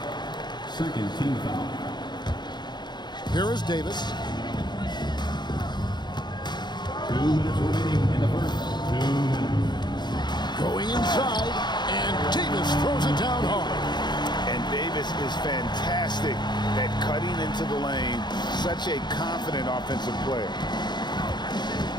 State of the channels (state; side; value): late; right; 0.21 ms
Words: Second team foul. Here is Davis. 2 minutes remaining in the first. 2 minutes. Going inside, and Davis throws it down hard. And Davis is fantastic at cutting into the lane. Such a confident offensive player.